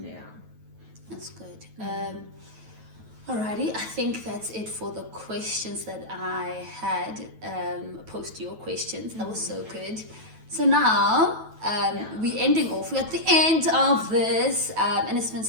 That's good. Alrighty, I think that's it for the questions that I had. Post your questions. That was so good. So now we're ending off. We're at the end of this, and it's been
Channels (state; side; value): late; left; 9.2 ms